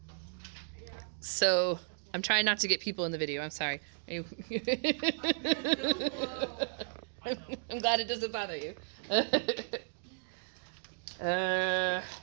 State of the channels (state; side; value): silent; left; digital silence